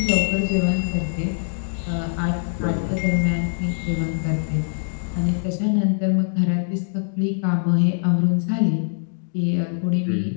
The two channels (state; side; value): silent; right; digital silence